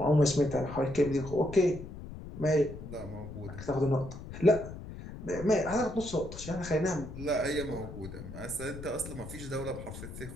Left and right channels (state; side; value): noise; left; rumble, 11 dB below the sound